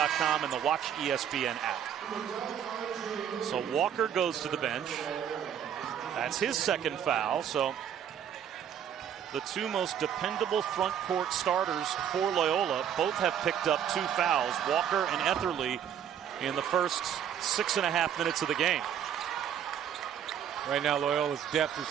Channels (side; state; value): left; quieter; 9.2 dB